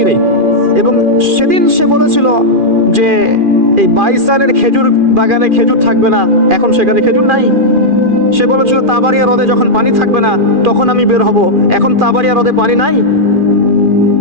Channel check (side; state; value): left; late; 2.4 ms